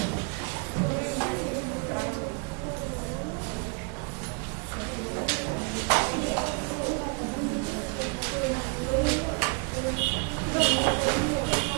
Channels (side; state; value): left; quieter; 34.0 dB